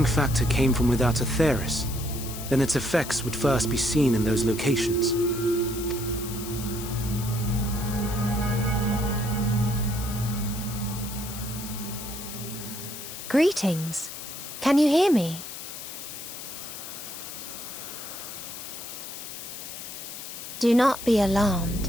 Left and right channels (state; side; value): noise; left; hiss, 10 dB below the sound